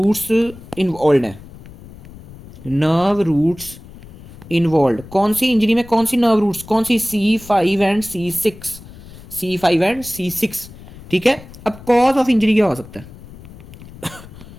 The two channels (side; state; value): left; noise; rumble, 18 dB below the sound